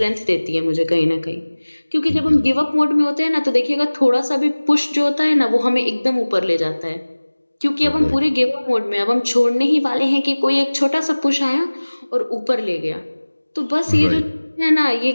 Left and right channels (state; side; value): inverted; both; correlation -1.00